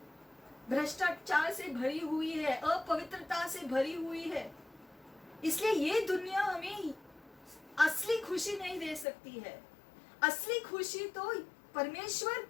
भ्रष्टाचार से भरी हुई है, अपवित्रता से भरी हुई है। इसलिए ये दुनिया हमें असली खुशी नहीं दे सकती है। असली खुशी तो परमेश्वर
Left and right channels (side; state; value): right; drops out; at 9.1 s